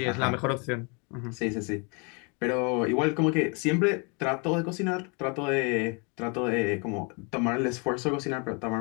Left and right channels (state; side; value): quieter; right; 33.5 dB